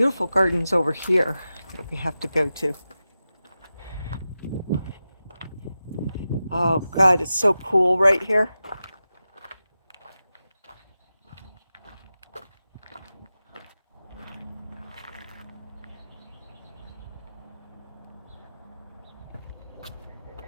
gardens over here that we have to go to. Oh God, it's so cool right here.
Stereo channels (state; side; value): inverted; both; correlation -0.93